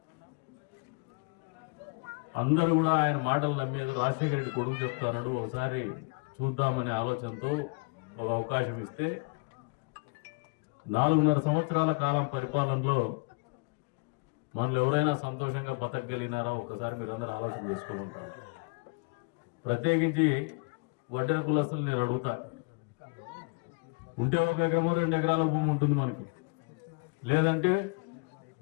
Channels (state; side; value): quieter; right; 32.4 dB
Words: అందరూ కూడా ఆయన మాటలు నమ్మేది. రాజశేఖర రెడ్డి కొడుకు చెప్తాడు, ఒకసారి చూద్దామనే ఆలోచనతో ఒక అవకాశం ఇస్తే 4.5 సంవత్సరాల కాలం పరిపాలనలో మనల్ని ఎవరైనా సంతోషంగా బతకగలిగినారా ఒకసారి మీరు అందరూ ఆలోచన చేసుకోమంటారు. ప్రత్యేకించి వడ్డెర కులస్తులు నేను అడుగుతా, ఉంటే 1 ఎకరమో 2 ఎకరాల భూమి ఉంటుంది మనకి, లేదంటే